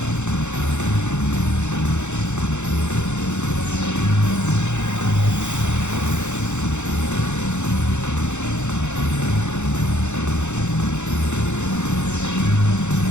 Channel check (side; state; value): right; late; 0.83 ms